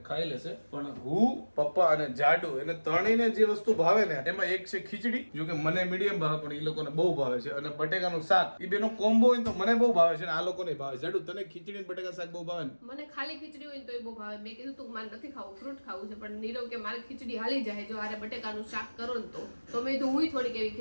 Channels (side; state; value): both; inverted; correlation -1.00